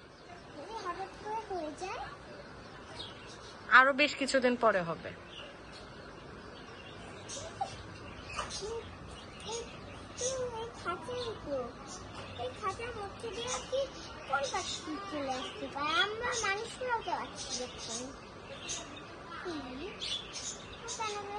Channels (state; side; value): identical; both; correlation 1.00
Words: হঠাৎ করে হয়ে যায়? আরো বেশ কিছুদিন পরে হবে। এই খাঁচার মধ্যে দিয়ে কি কোন পাখি চলে আসতে পারে? আমরা মানুষরাও তো আছি দেখুন।